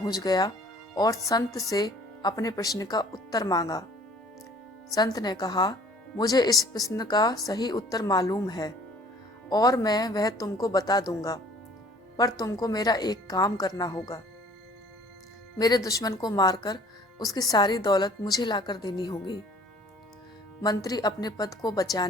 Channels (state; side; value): normal; both; correlation 0.53